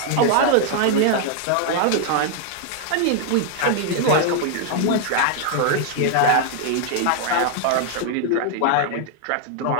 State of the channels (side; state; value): both; different; correlation 0.00